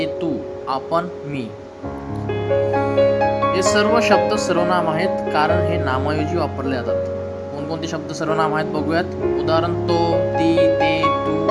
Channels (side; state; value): both; identical; correlation 1.00